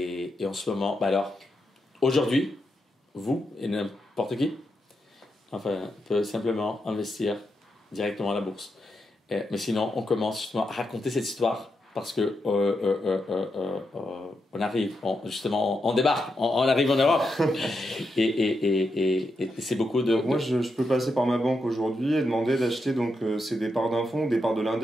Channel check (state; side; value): normal; both; correlation 0.84